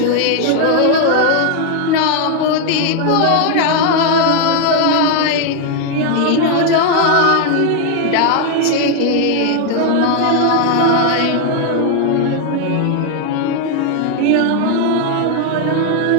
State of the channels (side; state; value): both; different; correlation 0.00